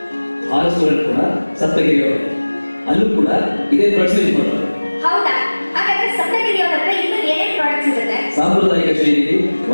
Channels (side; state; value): both; inverted; correlation -1.00